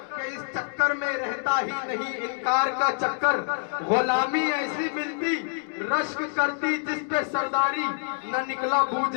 कि इस चक्कर में रहता ही नहीं इनकार का चक्कर। गुलामी ऐसी मिलती रश्क करती जिस पे सरदारी, न निकला बू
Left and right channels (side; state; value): right; silent; digital silence